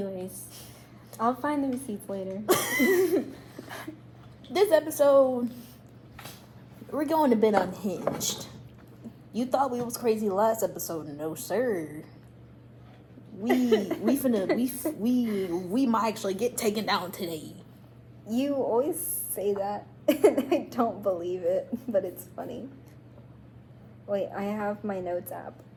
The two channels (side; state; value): both; identical; correlation 1.00